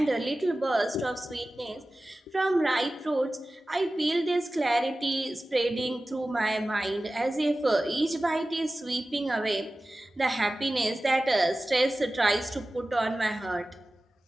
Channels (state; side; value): normal; both; correlation 0.96